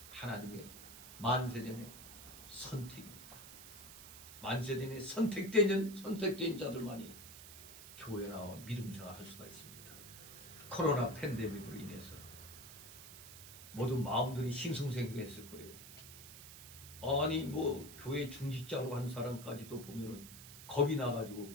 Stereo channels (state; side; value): noise; right; hiss, 14 dB below the sound